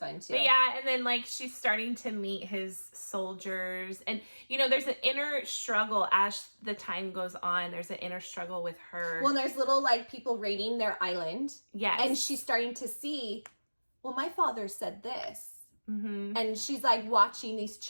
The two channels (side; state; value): both; inverted; correlation -1.00